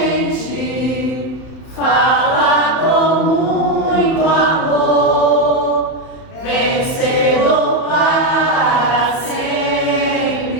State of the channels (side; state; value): right; late; 31 ms